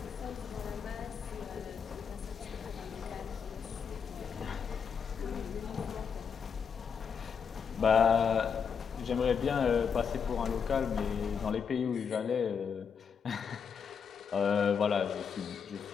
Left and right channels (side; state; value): right; quieter; 6.6 dB